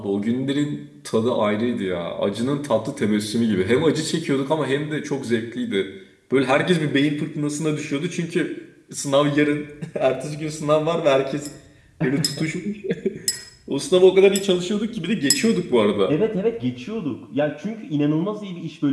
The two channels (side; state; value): both; identical; correlation 1.00